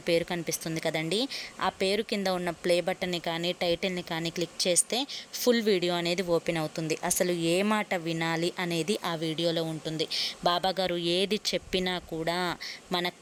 పేరు కనిపిస్తుంది కదండి. ఆ పేరు కింద ఉన్న ప్లే బటన్ని కానీ టైటిల్ని కానీ క్లిక్ చేస్తే ఫుల్ వీడియో అనేది ఓపెన్ అవుతుంది. అసలు ఏ మాట వినాలి అనేది ఆ వీడియోలో ఉంటుంది. బాబాగారు ఏది చెప్పినా కూడా మన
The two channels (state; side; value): identical; both; correlation 1.00